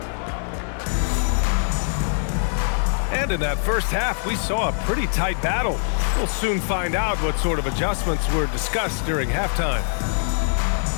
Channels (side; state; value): right; silent; 63 dB below the other